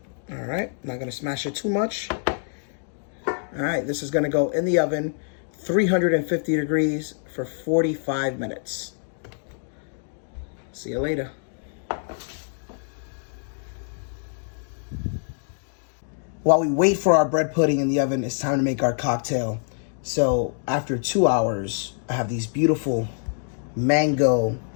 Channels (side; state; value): right; silent; 61 dB below the other